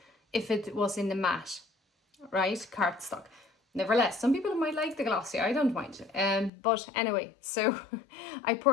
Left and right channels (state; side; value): drops out; right; at 6.5 s